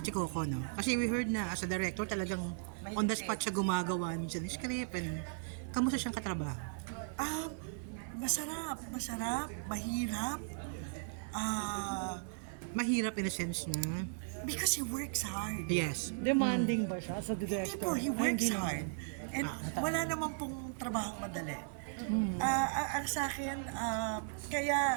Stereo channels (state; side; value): silent; left; 53 dB below the other